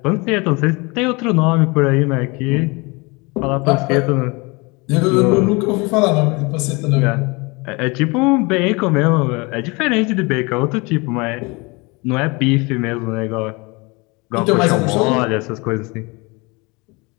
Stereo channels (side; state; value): right; quieter; 26.9 dB